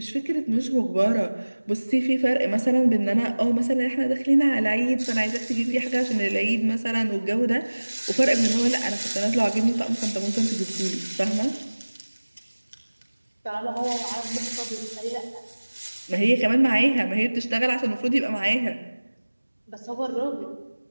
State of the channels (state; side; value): inverted; both; correlation -1.00